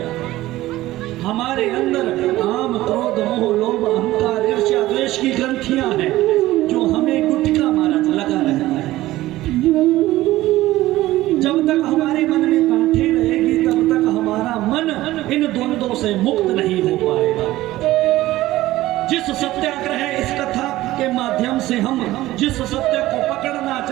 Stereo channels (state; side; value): quieter; left; 16.5 dB